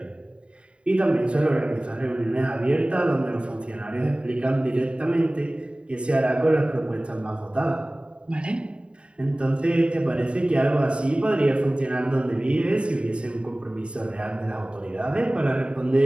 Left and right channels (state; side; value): late; left; 0.056 ms